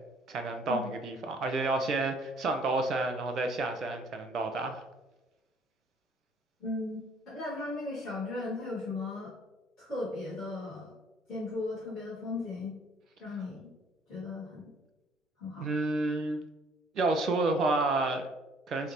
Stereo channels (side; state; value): both; normal; correlation 0.60